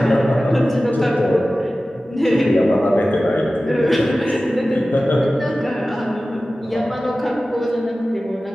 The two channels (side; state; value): both; normal; correlation 0.96